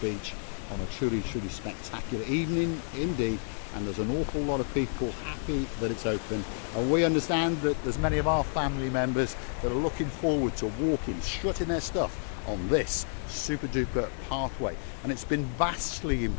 on a truly spectacular evening indeed. And there's an awful lot of people happy that it's open, and we understand that there's many of our family members that are looking forward to walking, strutting their stuff on this super duper pathway. And it's been vastly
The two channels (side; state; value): right; silent; digital silence